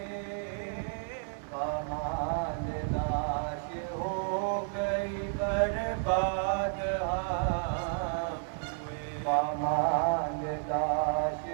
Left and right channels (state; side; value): silent; left; 57 dB below the other